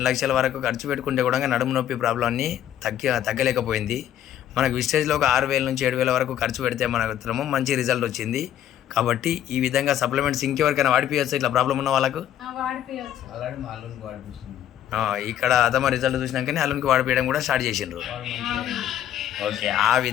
లక్షల వరకు ఖర్చు పెట్టుకుంటే కూడా నడుము నొప్పి ప్రాబ్లమ్ని తగ్గలేకపోయింది. మనకు విస్టేజ్లో ఒక 6,000 నుంచి 7,000 వరకు ఖర్చు పెడితే మనకు మంచి రిజల్ట్ వచ్చింది. కాబట్టి ఈ విధంగా సప్లిమెంట్స్ ఇంకెవరికైనా వాడిపోయచ్చు. ఇట్లా ప్రాబ్లం ఉన్న వాళ్ళకు ఇక్కడ అదమ రిజల్ట్ చూసినాకనే అల్లునికి వాడిపోయడం కూడా స్టార్ట్ చేసిండ్రు. ఓకే, ఆ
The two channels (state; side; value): quieter; right; 11.0 dB